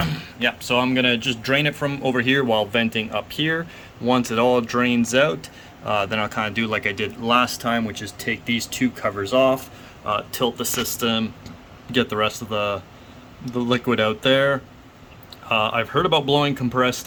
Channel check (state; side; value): identical; both; correlation 1.00